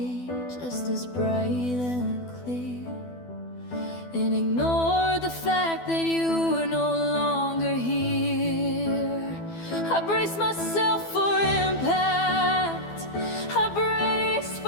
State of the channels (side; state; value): right; late; 12 ms